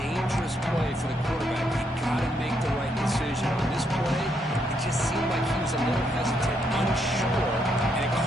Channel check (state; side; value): normal; both; correlation 0.76